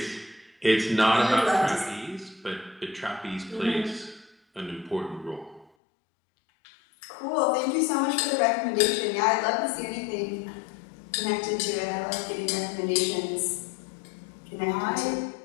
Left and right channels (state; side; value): drops out; right; at 5.7 s